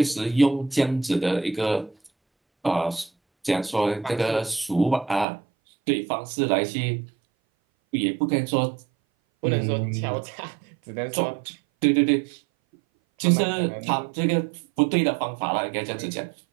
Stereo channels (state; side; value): drops out; left; at 5.2 s